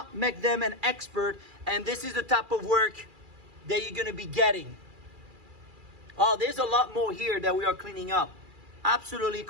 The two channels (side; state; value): left; late; 2.4 ms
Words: make them an expert. And this is the type of work that you're going to be getting. Oh, there's a lot more here that we are cleaning up. Absolutely